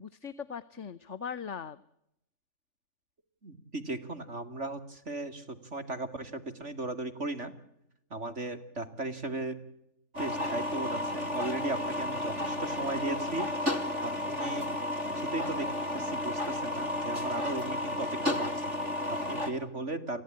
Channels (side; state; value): left; late; 3.4 ms